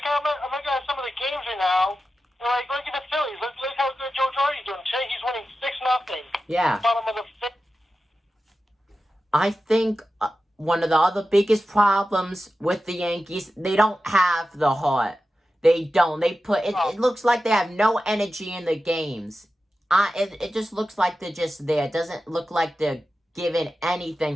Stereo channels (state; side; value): normal; both; correlation 0.93